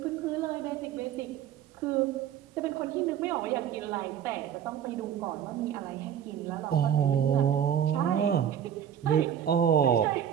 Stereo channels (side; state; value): left; quieter; 9.4 dB